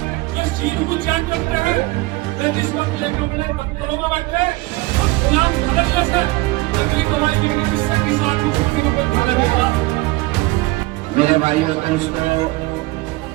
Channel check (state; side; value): quieter; left; 21.2 dB